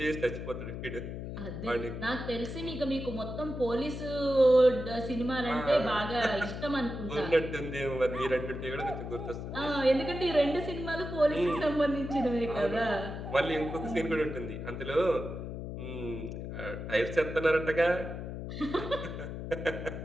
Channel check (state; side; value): noise; left; hum, 7 dB below the sound